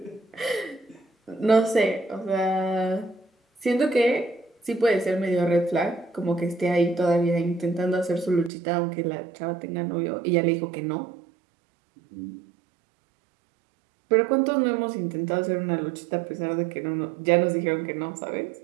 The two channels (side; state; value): left; drops out; at 8.5 s